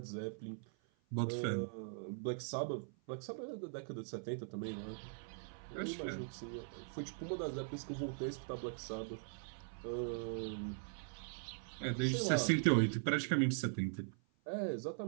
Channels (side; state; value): left; silent; 50 dB below the other